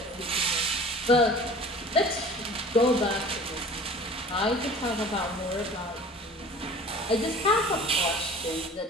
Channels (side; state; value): both; normal; correlation 0.44